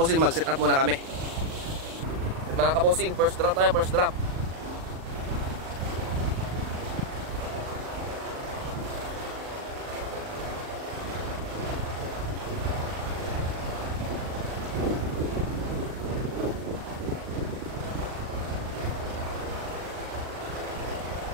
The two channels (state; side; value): late; left; 38 ms